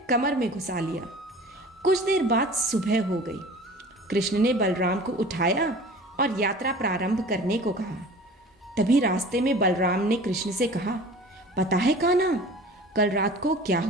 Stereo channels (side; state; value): both; normal; correlation 0.42